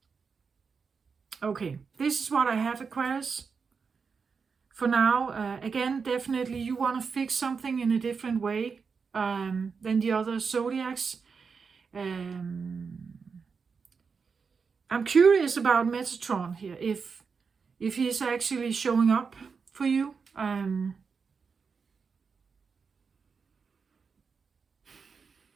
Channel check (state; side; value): quieter; left; 5.5 dB